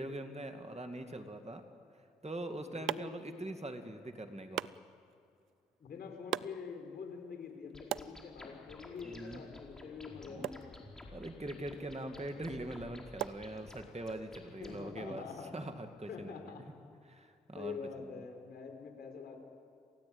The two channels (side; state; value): both; normal; correlation 0.59